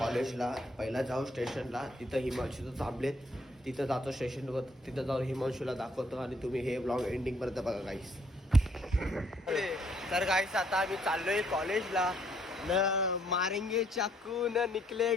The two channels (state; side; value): normal; both; correlation 0.67